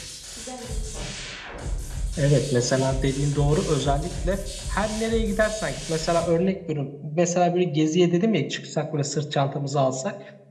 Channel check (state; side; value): identical; both; correlation 1.00